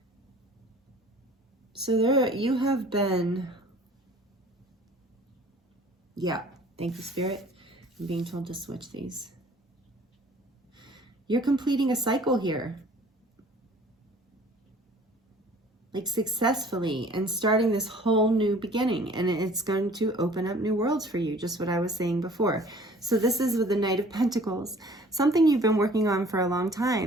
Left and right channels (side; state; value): both; normal; correlation 0.51